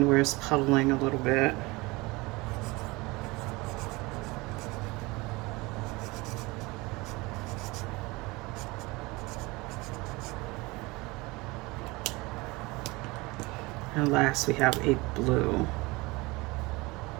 where it's puddling a little bit. And last we have a blue.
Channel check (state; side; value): quieter; left; 23.4 dB